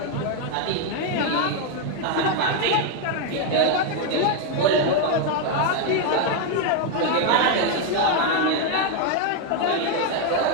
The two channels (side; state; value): both; different; correlation 0.01